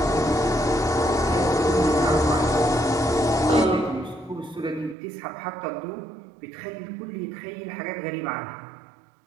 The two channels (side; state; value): left; drops out; at 5.0 s